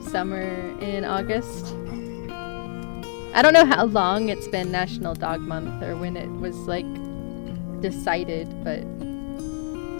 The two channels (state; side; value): silent; right; 62 dB below the other